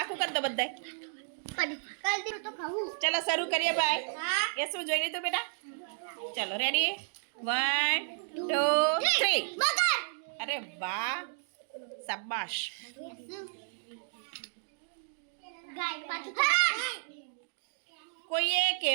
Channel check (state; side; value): silent; left; digital silence